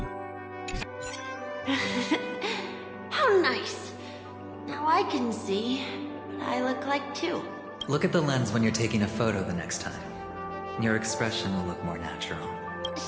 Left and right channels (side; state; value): both; identical; correlation 1.00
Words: can see, but I look like two. Look at the lens when you're taking a photo the next time. Your expression will look more natural.